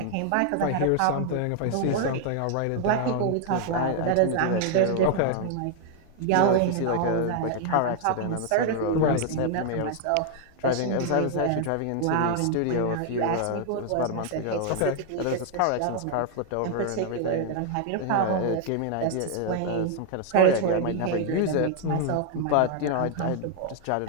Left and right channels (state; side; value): different; both; correlation 0.00